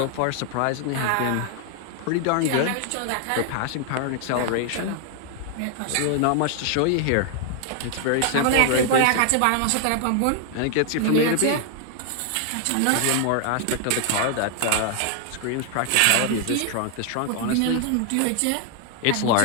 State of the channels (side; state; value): both; different; correlation 0.00